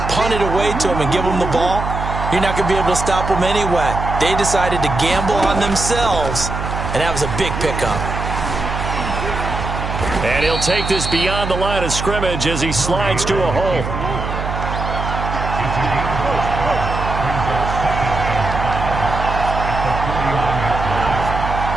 punt it away to them and give them the ball, you're not going to be able to stop them anyway. They decided to gamble on themselves, and that was a big pickup. And he'll take this beyond the line of scrimmage as he slides to a hole.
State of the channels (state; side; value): noise; right; hum, 5 dB below the sound